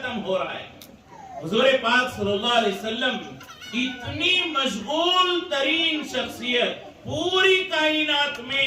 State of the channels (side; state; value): both; identical; correlation 1.00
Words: ہو رہا ہے۔ حضور پاک صلی اللہ علیہ وسلم اتنی مشغول ترین شخصیت، پوری کائنات میں